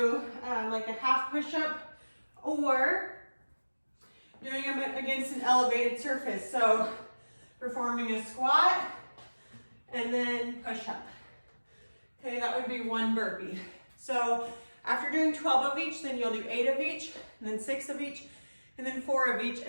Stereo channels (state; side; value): inverted; both; correlation -1.00